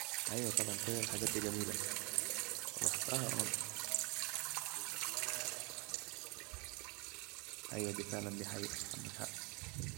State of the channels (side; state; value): left; quieter; 25.6 dB